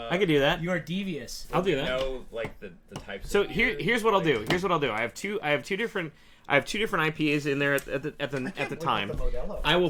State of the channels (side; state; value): both; identical; correlation 1.00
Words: can do that. you are devious. I'll do You that. know, like the types. So of beer, here's what I'll do. like- Here's what I'll do. I have two different IPAs in there at the time. Modelo. I will